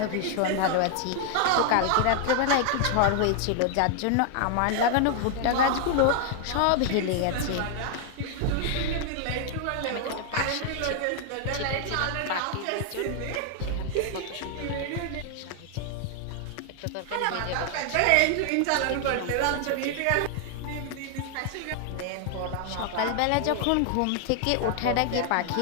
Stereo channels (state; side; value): different; both; correlation 0.00